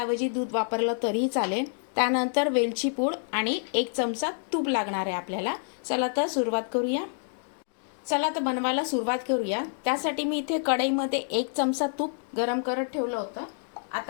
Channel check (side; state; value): right; silent; digital silence